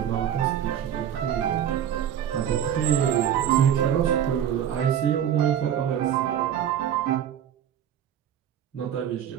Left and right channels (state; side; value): quieter; left; 9.8 dB